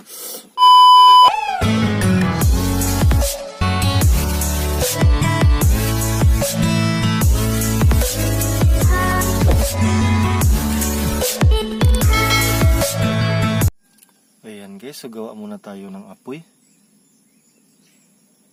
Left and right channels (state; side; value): identical; both; correlation 1.00